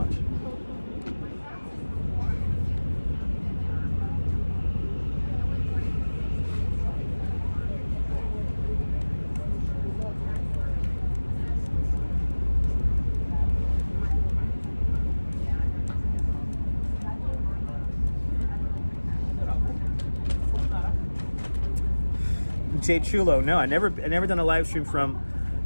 Jay Chulo, no, I never done a live stream from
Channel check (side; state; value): both; inverted; correlation -1.00